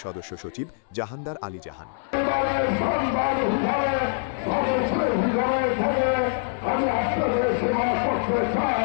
সদস্য সচিব জাহানদার আলী জাহান। আমি আপনাদের সেবা করতে চাই।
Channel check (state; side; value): silent; right; 62 dB below the other